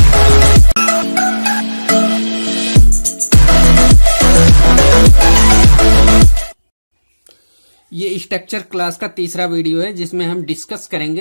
ये स्ट्रक्चर क्लास का तीसरा वीडियो है जिसमें हम डिस्कस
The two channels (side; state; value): both; inverted; correlation -1.00